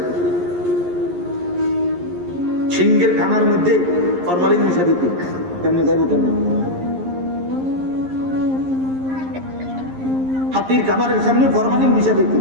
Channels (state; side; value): late; left; 11 ms